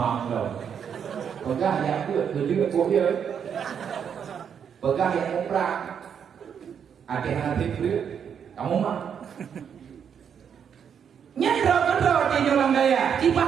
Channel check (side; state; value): left; quieter; 7.7 dB